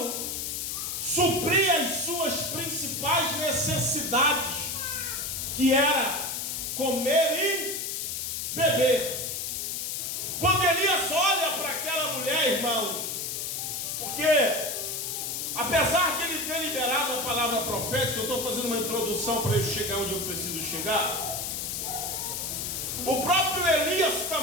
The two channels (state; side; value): noise; left; hiss, 3 dB below the sound